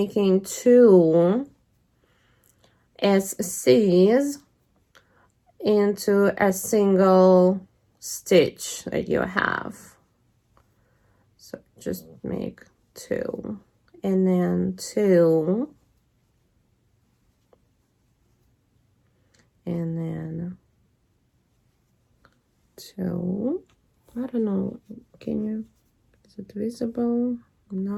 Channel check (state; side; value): identical; both; correlation 1.00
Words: 2 SCs into a single stitch that you have. So just make 2, and then 2, and then 2. I don't know, can you, is it visible?